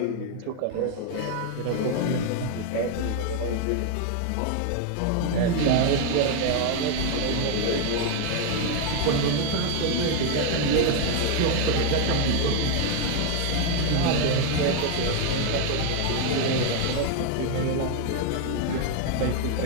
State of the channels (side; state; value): both; different; correlation 0.00